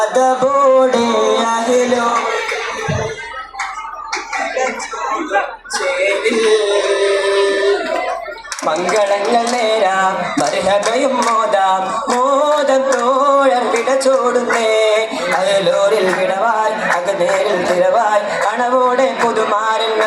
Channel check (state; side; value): identical; both; correlation 1.00